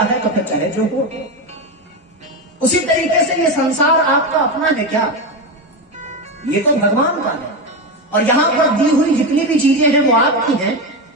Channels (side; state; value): both; normal; correlation 0.15